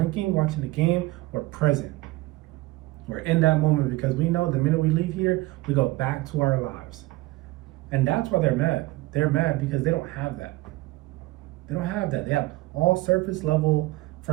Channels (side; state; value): left; quieter; 19.3 dB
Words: watching the game, we're present. We're in that moment because we know the minute we leave here, we go back to our lives. And that's why they're mad. They're mad because they don't have that. They don't have that. They have all surface level